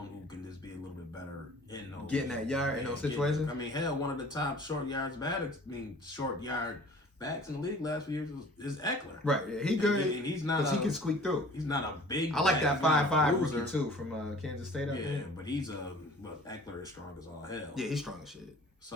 who can just be a little bit better in those getting that yard in those situations. I mean, hell, one of the top short yard backs in the league last few years is Eckler. Right, yeah, he good. And he's not. He can squeak through. He's not a big. I like that 5'5" rookie too from Kansas State. Yeah, but Eckler is strong as all hell. Yeah, he's strong as shit.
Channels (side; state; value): both; normal; correlation 0.48